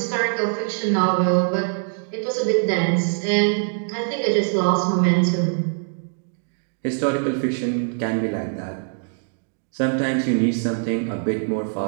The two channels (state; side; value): silent; left; digital silence